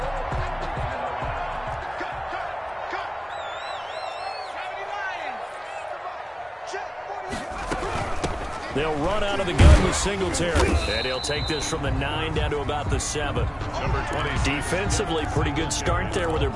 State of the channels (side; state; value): both; identical; correlation 1.00